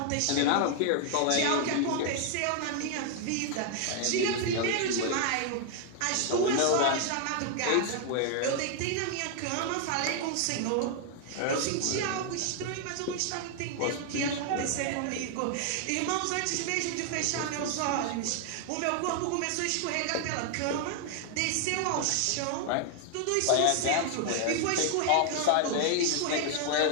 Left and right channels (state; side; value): different; both; correlation 0.00